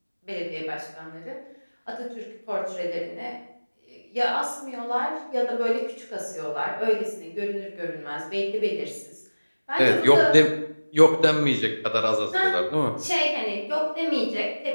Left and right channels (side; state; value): both; inverted; correlation -1.00